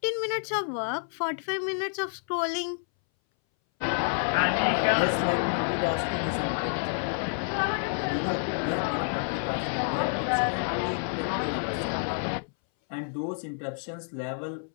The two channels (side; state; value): right; silent; 59 dB below the other